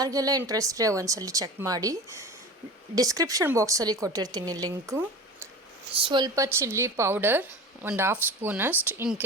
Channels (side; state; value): both; normal; correlation 0.33